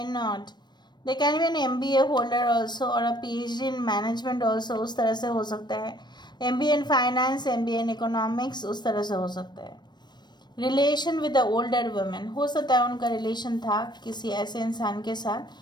not. They can be an MBA holder also और a PhD in management also, उस तरह से हो सकता है। MBA in finance, MBA in economics, उस तरह से हो सकता है। Relation with the older women, हो सकता है उनका रिलेशन था किसी ऐसे इंसान के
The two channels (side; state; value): right; late; 0.21 ms